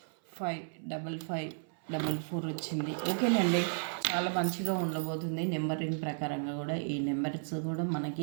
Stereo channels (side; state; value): left; silent; 55 dB below the other